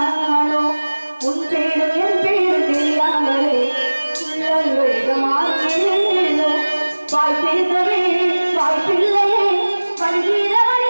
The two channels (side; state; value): both; inverted; correlation -1.00